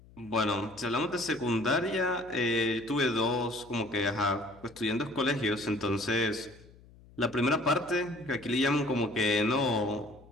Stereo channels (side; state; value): left; noise; hum, 24 dB below the sound